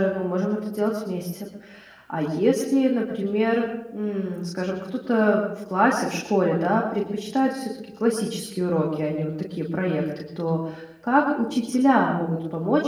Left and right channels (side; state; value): both; identical; correlation 1.00